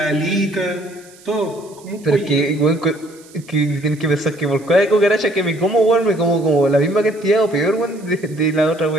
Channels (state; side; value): noise; right; hiss, 25 dB below the sound